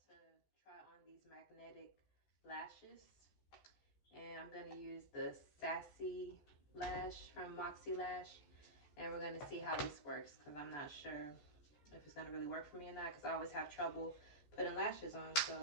to try on these magnetic lashes, and I'm gonna use the Sassy Lash from Moxie Lash, and we're gonna see how this works because I'm not sure if it's gonna really work for me or not, because I always have trouble putting lashes on.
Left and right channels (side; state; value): right; late; 14 ms